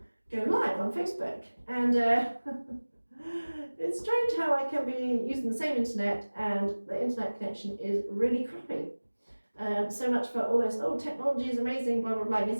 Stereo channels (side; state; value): both; inverted; correlation -1.00